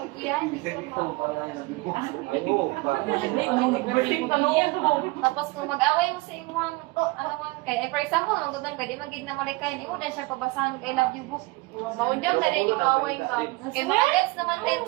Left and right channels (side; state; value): left; quieter; 23.5 dB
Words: Tapos kung mag-away mo sa imong ano man kay for example, magdudang pwede magig na malikay nimo dan siya pabasahan kay love you book. Maundang na din yung away ma'am. Kay mga naman din